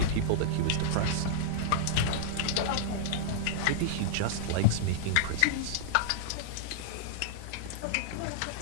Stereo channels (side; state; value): both; different; correlation -0.01